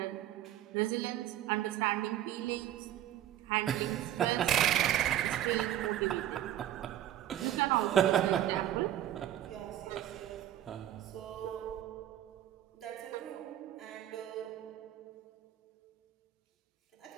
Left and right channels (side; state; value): left; quieter; 12.1 dB